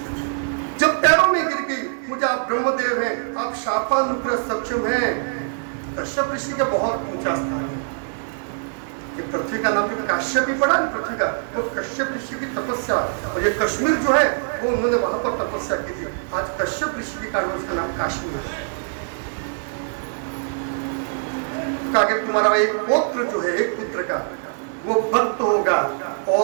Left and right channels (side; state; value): left; silent; 55 dB below the other